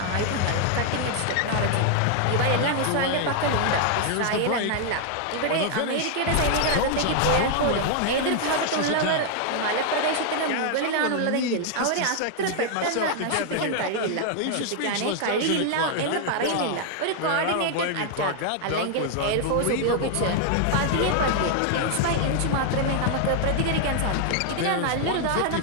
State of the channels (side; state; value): both; different; correlation 0.00